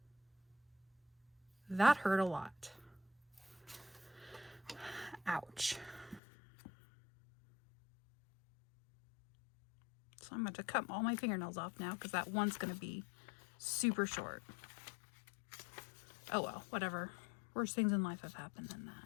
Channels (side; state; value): right; drops out; at 6.2 s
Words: That hurt a lot. Ouch. So I'm going to cut all my fingernails off now because that one's going to be super short. Oh well, whatever. Worst things in life have happened than